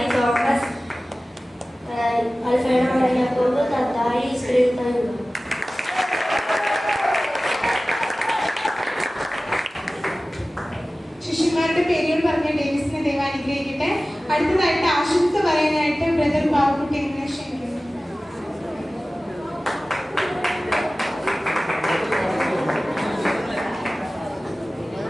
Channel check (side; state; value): both; normal; correlation 0.97